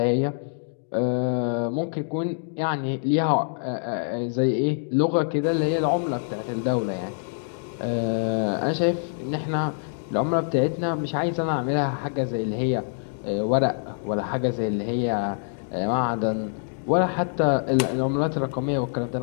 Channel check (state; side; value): silent; right; digital silence